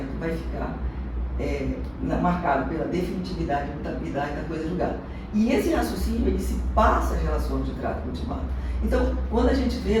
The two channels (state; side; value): identical; both; correlation 1.00